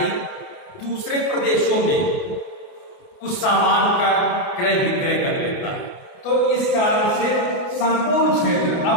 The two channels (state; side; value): late; right; 28 ms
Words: दूसरे प्रदेशों में उस सामान का क्रय विक्रय कर लेता है। तो इस कारण से संपूर्ण क्षेत्र,